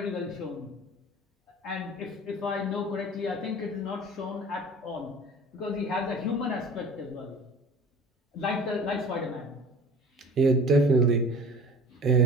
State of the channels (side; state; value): both; normal; correlation 0.42